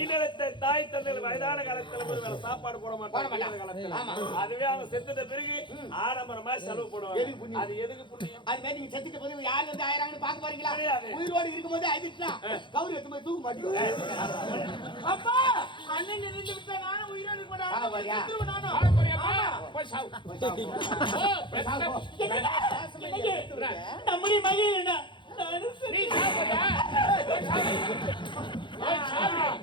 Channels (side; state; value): right; late; 0.23 ms